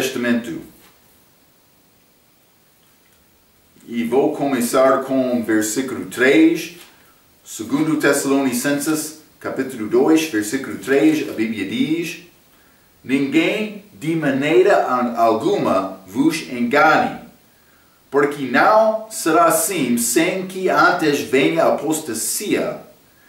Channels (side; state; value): both; identical; correlation 1.00